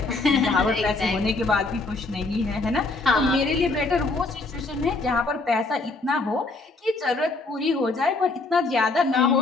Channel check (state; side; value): quieter; right; 3.5 dB